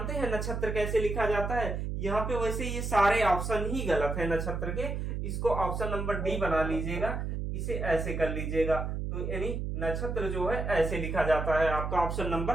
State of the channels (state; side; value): noise; right; hum, 3 dB below the sound